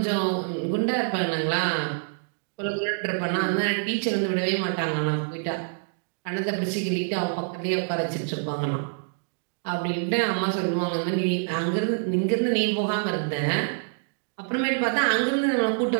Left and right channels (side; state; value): left; silent; digital silence